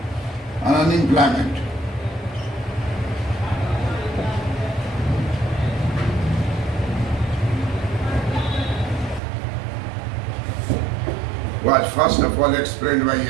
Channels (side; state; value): left; drops out; at 9.2 s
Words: and unemployment was first of all explained by